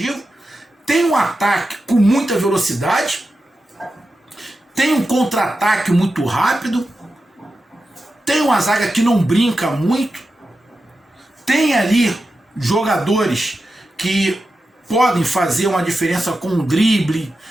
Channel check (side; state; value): both; normal; correlation 0.91